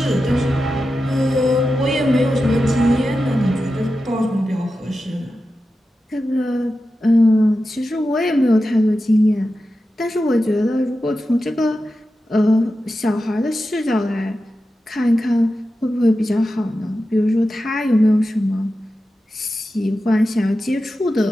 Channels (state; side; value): normal; both; correlation 0.92